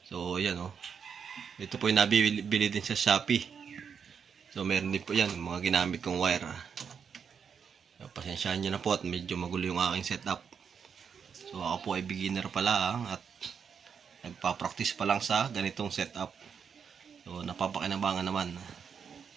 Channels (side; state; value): left; quieter; 6.8 dB